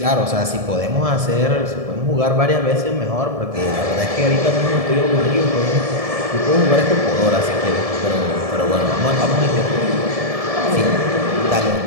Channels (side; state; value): left; late; 1.7 ms